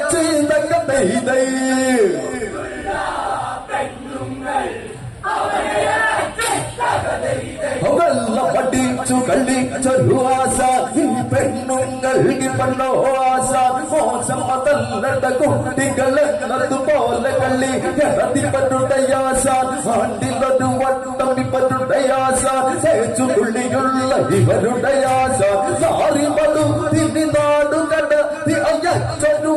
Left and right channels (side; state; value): both; identical; correlation 1.00